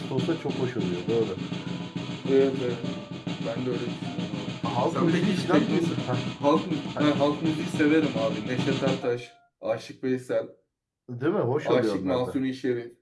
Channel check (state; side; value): identical; both; correlation 1.00